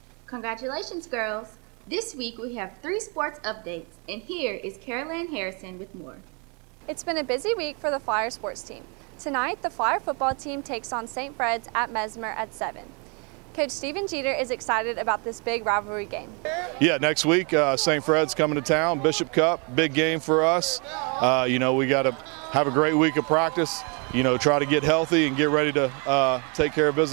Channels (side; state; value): left; quieter; 34.3 dB